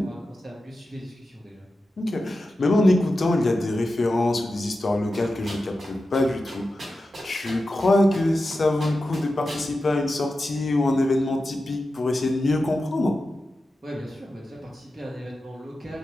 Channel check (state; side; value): normal; both; correlation 0.92